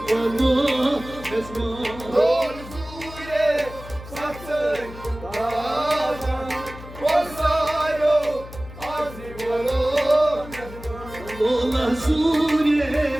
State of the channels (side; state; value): left; noise; hum, 15 dB below the sound